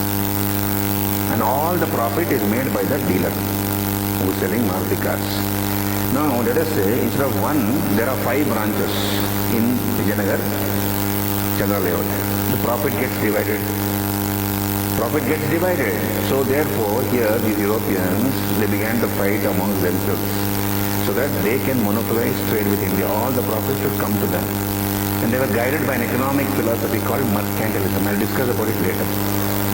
And all the profit is made by the dealer who is selling Maruti cars. Now let us say instead of one, there are 5 branches in Vijayanagar, Chandra layout. The profit gets divided. Profit gets divided. So therefore here these Europeans, they began to fight amongst themselves so that they can monopolize trade with India. All the profits should come to them. And they were guided by an economic philosophy called mercantilism. I'll discuss about it later.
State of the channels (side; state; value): both; identical; correlation 1.00